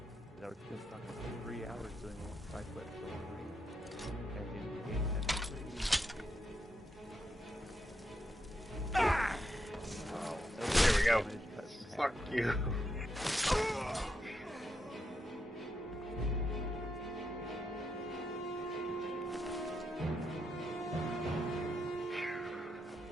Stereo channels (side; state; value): both; normal; correlation 0.82